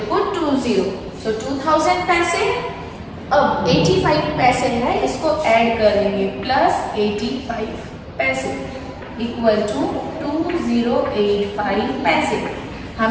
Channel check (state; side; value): identical; both; correlation 1.00